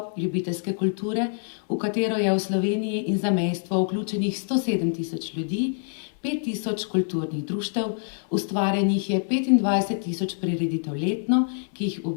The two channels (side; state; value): right; silent; digital silence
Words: ljubiteljske kulture, v katero je v Sloveniji in zamejstvu vključenih 107 tisoč ljudi, 5 tisoč kulturnih društev, ustvarjenih je 25 tisoč prireditev letno, ki jih